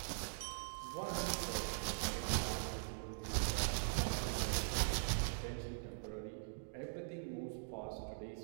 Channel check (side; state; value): left; silent; digital silence